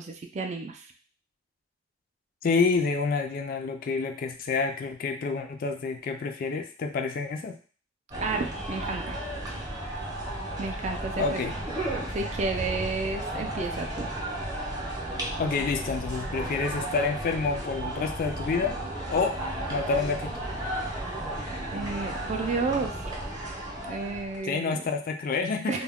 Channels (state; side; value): normal; both; correlation 0.27